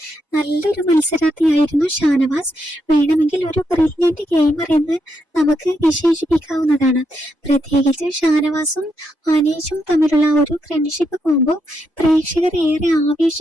നല്ലൊരു മത്സരാർത്ഥിയായിരുന്നു ഷാനവാസ്. വേണമെങ്കിൽ ഒരു ബ്രില്യന്റ് ഗെയിമർ എന്ന് നമുക്ക് വിശേഷിപ്പിക്കാവുന്നതാണ്. പ്രത്യേകിച്ച് ഷാനവാസും അനീഷും തമ്മിലുള്ള ഒരു ഫ്രണ്ട്ഷിപ്പ് കോംബോ പ്രേക്ഷകർ ഏറെ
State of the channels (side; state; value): both; normal; correlation 0.80